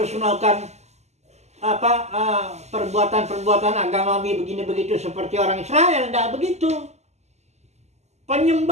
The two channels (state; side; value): late; left; 0.33 ms